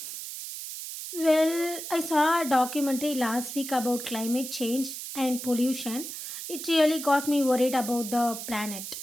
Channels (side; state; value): right; noise; hiss, 8 dB below the sound